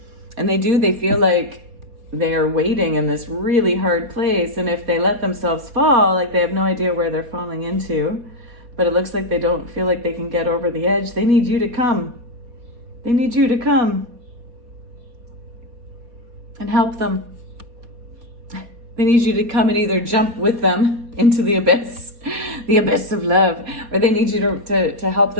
And they feel like they are waiting in this really hard place, and if they let themselves fall, like they have no idea where they're falling into, but it looks like they don't feel like they can get over the edge. They need you to come. They need you to come. and help them. They need you to come and either jump with them into the abyss of love, or they need you to help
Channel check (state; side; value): late; left; 4.2 ms